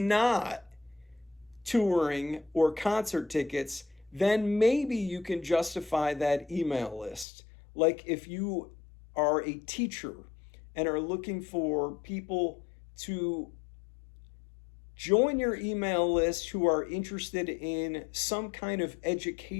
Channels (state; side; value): drops out; right; at 7.2 s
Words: touring or concert tickets, then maybe you can justify that email list. Like if you are a teacher and are looking for people to join your email list who are interested in some kind of